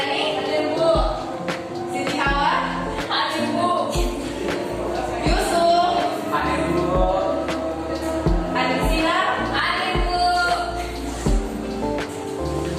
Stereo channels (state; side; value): identical; both; correlation 1.00